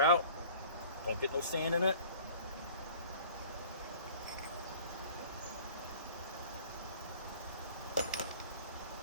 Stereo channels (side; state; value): both; inverted; correlation -0.47